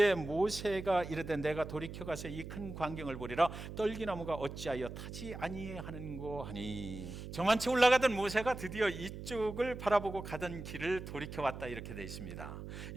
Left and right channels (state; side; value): noise; right; hum, 9 dB below the sound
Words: 모세가 이르되 내가 돌이켜가서 이 큰 광경을 보리라 떨기나무가 어찌하여 타지 아니하는고 하니. 저만치 올라가던 모세가 드디어 이쪽을 바라보고 가던 길을 돌이켜왔다 이렇게 되어 있습니다.